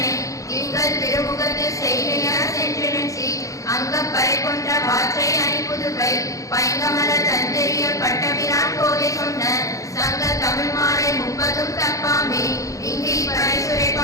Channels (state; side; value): late; right; 0.16 ms